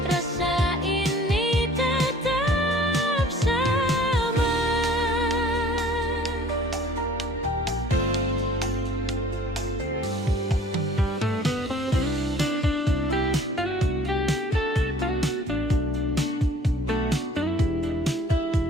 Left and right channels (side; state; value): both; normal; correlation 0.52